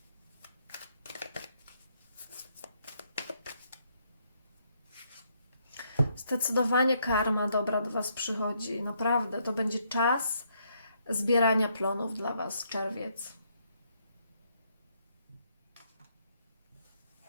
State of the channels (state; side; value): inverted; both; correlation -0.73